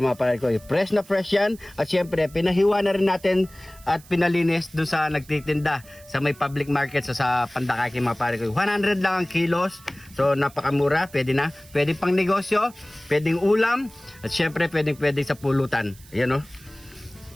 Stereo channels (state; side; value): noise; right; hiss, 23 dB below the sound